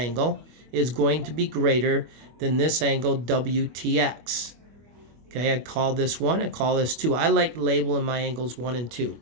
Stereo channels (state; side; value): late; left; 25 ms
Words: is going to be greater than this angle WTX. Okay, I call this 1, I call this 2. I like labeling my angles 1 and 2.